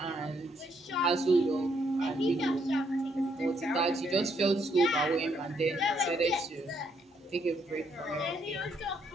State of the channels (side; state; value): both; normal; correlation 0.73